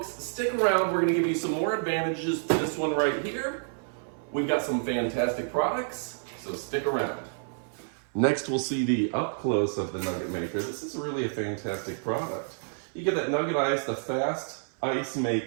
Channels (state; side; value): silent; left; 59 dB below the other